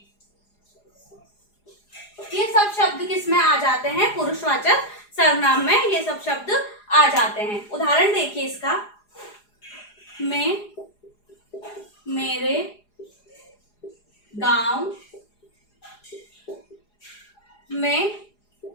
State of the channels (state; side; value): late; right; 4.9 ms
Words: ये सब शब्द किसमें आ जाते हैं? पुरुषवाचक सर्वनाम में ये सब शब्द आ जाते हैं। उदाहरण देखिए इसका, मैं मेरे गांव में